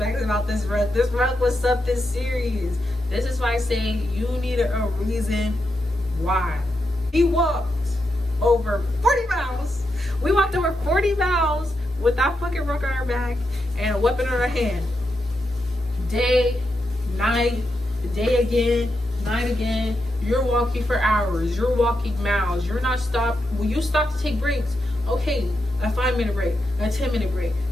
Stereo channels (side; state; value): both; normal; correlation 0.85